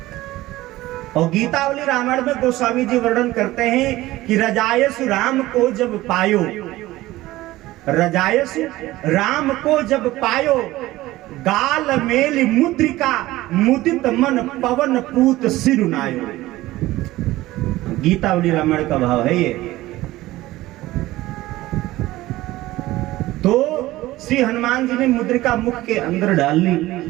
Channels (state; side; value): quieter; left; 17.3 dB